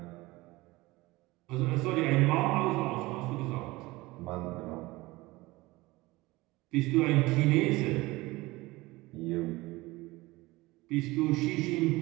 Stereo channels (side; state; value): left; quieter; 20.7 dB